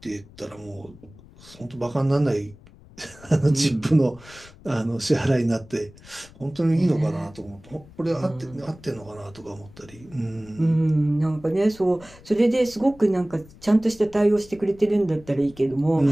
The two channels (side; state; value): left; noise; rumble, 22 dB below the sound